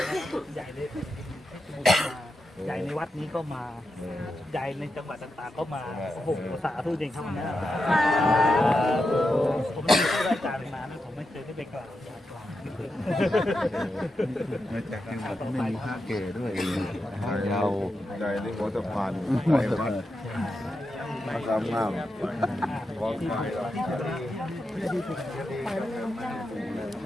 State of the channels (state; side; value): normal; both; correlation 0.87